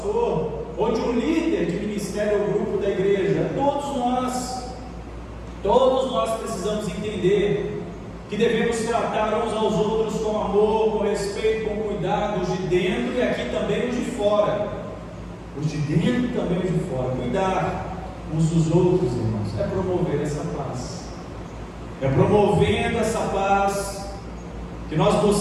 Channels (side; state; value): both; identical; correlation 1.00